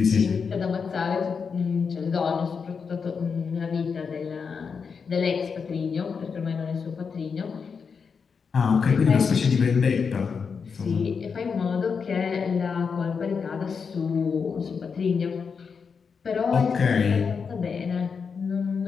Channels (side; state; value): right; quieter; 5.8 dB